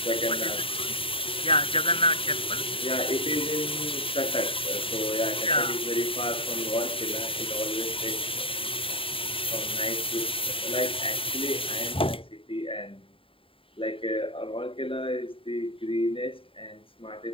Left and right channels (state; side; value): late; right; 0.26 ms